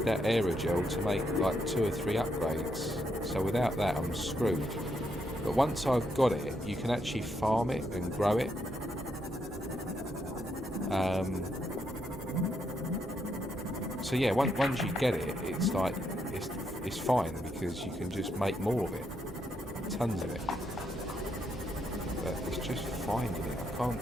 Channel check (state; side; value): normal; both; correlation 0.78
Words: that aerogel to make like 2 or 3 upgrades, so without that I'm screwed. But once I've got it, you can actually farm it and grow it. So yeah, once you get it, it's like it's fine, because you can just make more of it, tons of it. But it's just finding it. I can't